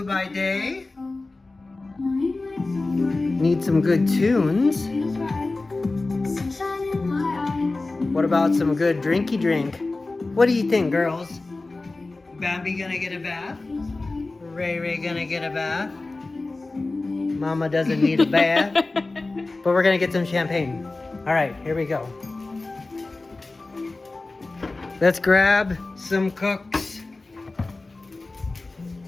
by day. Need some good tunes. What about some good drinky drink? What do you think, girls? Bambi gonna get a bath? Ray gonna get a bath? Mama doesn't need a bath. But we're gonna get some champagne. Alright, here we go. Let's grab some cooks.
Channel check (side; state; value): right; quieter; 3.3 dB